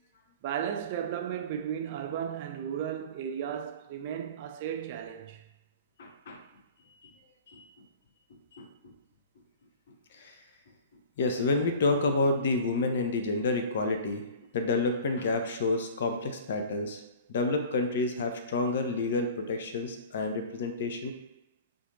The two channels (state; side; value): inverted; both; correlation -0.41